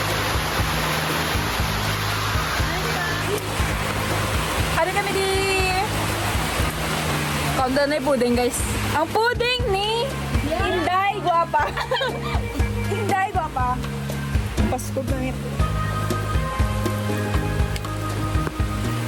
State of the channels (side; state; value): both; identical; correlation 1.00